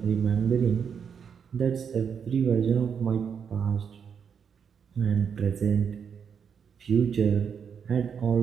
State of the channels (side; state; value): left; quieter; 7.0 dB